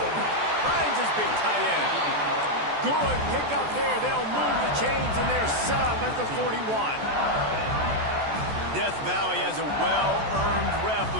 Finds his big tight end. Good pick up there. They'll move the chains, and they're set up at the 41. Death Valley has a well-earned rep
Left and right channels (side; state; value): left; late; 14 ms